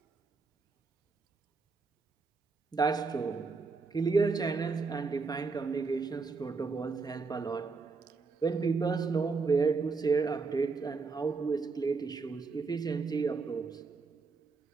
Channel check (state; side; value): quieter; left; 4.5 dB